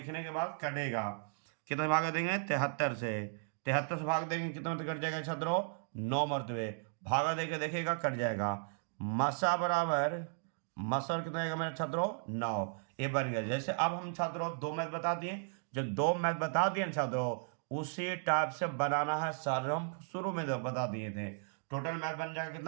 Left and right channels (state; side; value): silent; left; digital silence